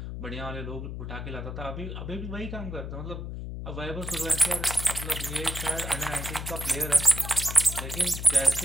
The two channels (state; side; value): noise; left; hum, 7 dB below the sound